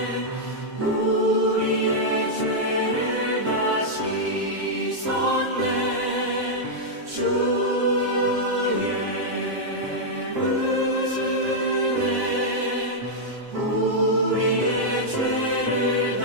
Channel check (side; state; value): left; late; 7.5 ms